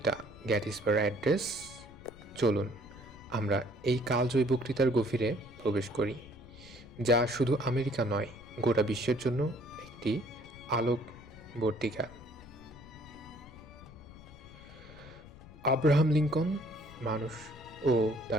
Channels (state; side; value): noise; left; rumble, 19 dB below the sound